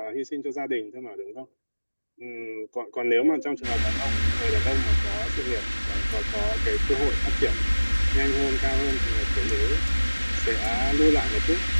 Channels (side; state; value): both; inverted; correlation -1.00